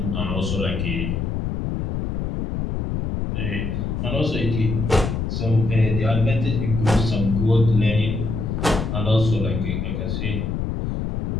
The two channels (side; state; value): left; noise; rumble, 2 dB below the sound